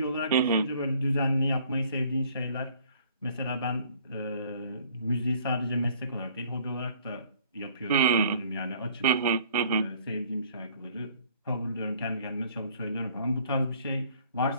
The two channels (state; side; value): inverted; both; correlation -0.57